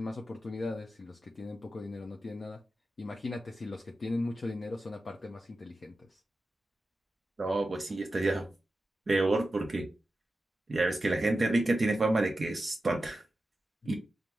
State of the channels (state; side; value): normal; both; correlation 0.92